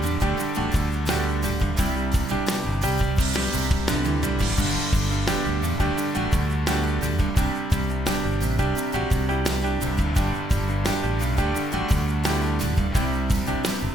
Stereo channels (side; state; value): both; normal; correlation 0.75